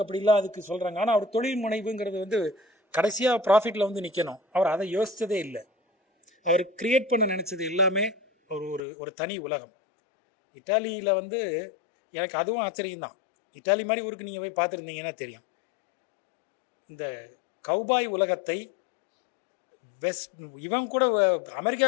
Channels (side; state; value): right; drops out; at 8.8 s